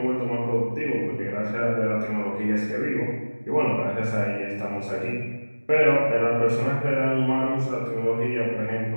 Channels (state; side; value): inverted; both; correlation -1.00